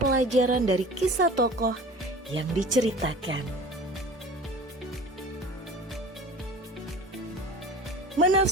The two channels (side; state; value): both; normal; correlation 0.40